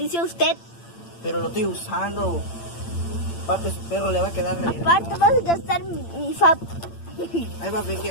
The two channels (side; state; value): right; late; 8.8 ms